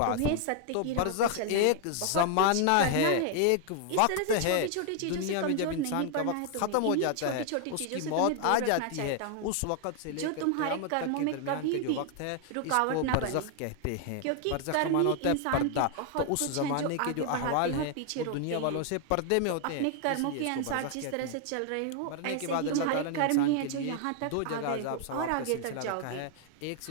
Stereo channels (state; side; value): different; both; correlation 0.00